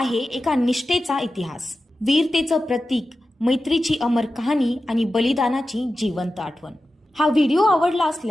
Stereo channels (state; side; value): normal; both; correlation 0.93